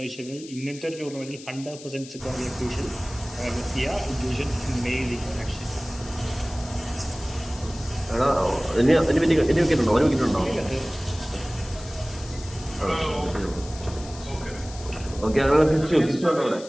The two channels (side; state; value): left; noise; hiss, 16 dB below the sound